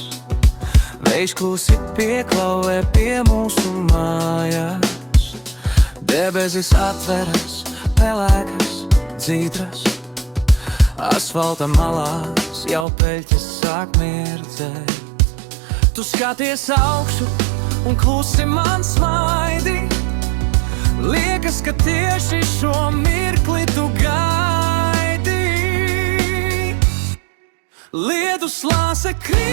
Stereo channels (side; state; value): left; drops out; at 12.9 s